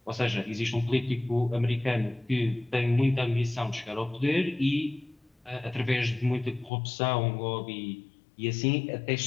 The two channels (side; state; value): right; drops out; at 6.7 s